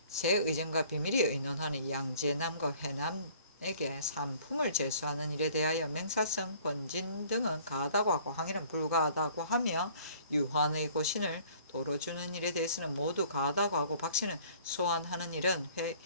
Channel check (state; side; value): inverted; both; correlation -0.54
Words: 새 의전과 비밀이 의논하는 양제남과 회남에게 산품을 제수하는 일에 대하여 맹사성, 권진 등은 가하다고 하고 항일은 불가하다고 하며 유환의 고신을 도로 주는 일에 대해서는 모두 가하다고 하고 박씨는 소환하는 일은